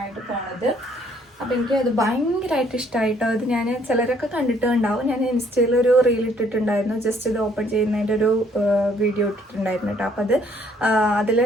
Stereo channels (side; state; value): both; normal; correlation 0.64